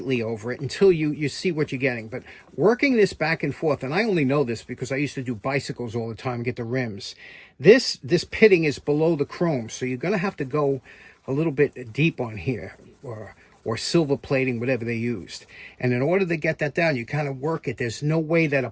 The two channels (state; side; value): identical; both; correlation 1.00